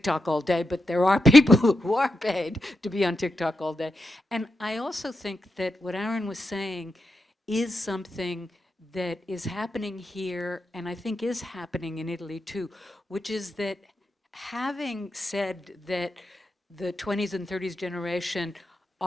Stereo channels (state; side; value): normal; both; correlation 0.87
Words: all day, but there are people who are paid to be on TikTok all day. And I also think that what Aaron was saying is something that is happening here, and I think is happening in Italy too, which is that having said that the 20s and 30s generation